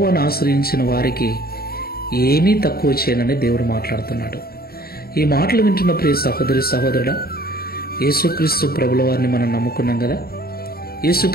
ఆశ్రయించిన వారికి ఏమీ తక్కువ చేయనని దేవుడు మాట్లాడుతున్నాడు. ఈ మాటలు వింటున్న ప్రియ సహోదరి సహోదరుడా, యేసుక్రీస్తు ప్రభుల వారిని మనం నమ్ముకున్నాం కదా,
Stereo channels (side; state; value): right; late; 0.44 ms